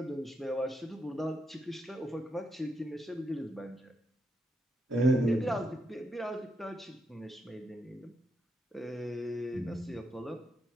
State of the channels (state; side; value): normal; both; correlation 0.82